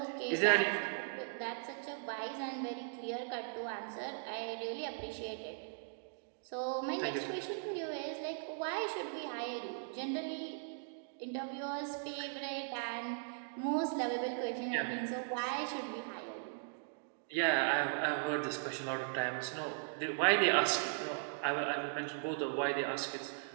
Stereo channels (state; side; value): silent; left; digital silence